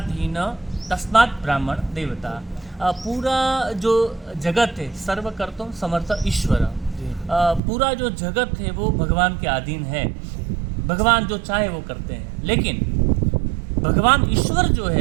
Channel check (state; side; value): drops out; left; at 7.6 s